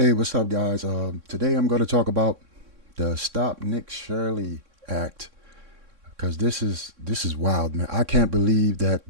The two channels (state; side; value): late; left; 3.6 ms